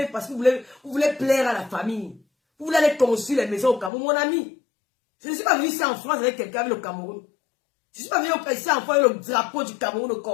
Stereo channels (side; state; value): right; drops out; at 3.9 s